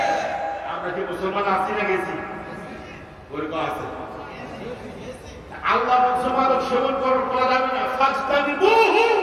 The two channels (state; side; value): identical; both; correlation 1.00